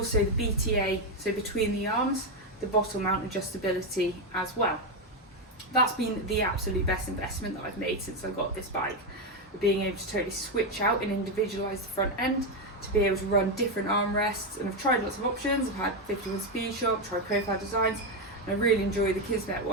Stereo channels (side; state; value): both; normal; correlation 0.07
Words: the BTA, so between the arms, the bottle mount adjustability as well. That's been the absolute best investment that I've made since I got this bike. Being able to totally switch out and individualise the front end to be able to run different armrests, and I've tried lots of options. I've had 51 Speed Shop, tried profile designs, and I really enjoy the Kismet